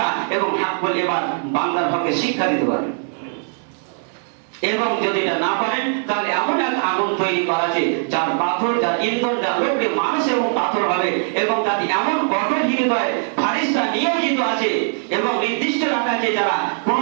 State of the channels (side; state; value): left; silent; 56 dB below the other